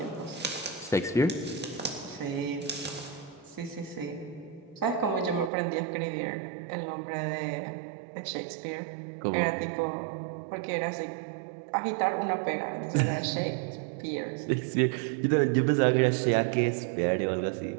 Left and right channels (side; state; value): left; drops out; at 5.5 s